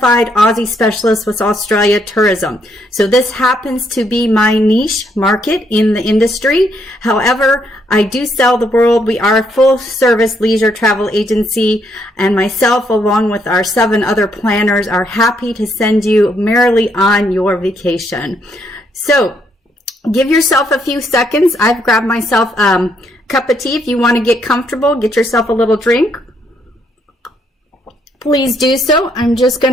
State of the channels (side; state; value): both; normal; correlation 0.73